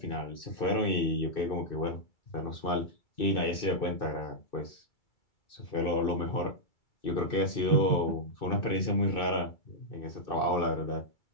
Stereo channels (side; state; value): right; late; 2.6 ms